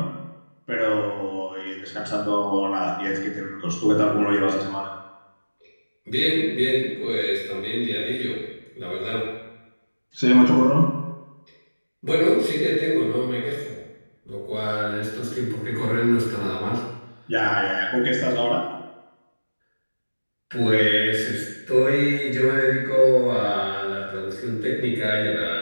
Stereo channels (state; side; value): inverted; both; correlation -1.00